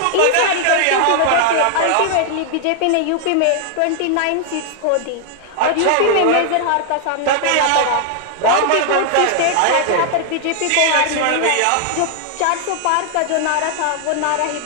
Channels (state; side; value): different; both; correlation 0.00